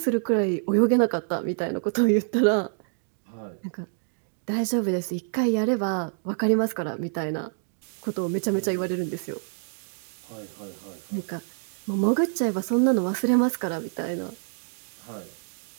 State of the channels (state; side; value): silent; left; digital silence